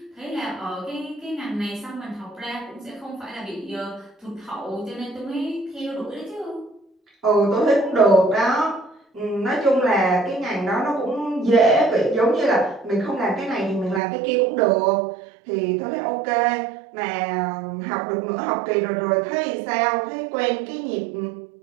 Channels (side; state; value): left; drops out; at 14.0 s